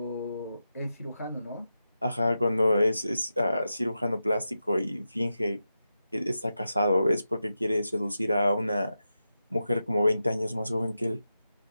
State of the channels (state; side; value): inverted; both; correlation -0.90